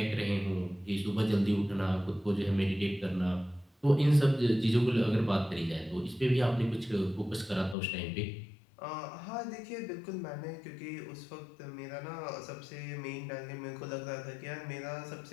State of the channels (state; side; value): drops out; right; at 7.8 s